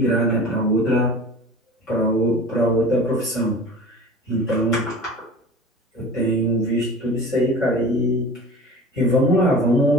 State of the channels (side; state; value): both; normal; correlation 0.38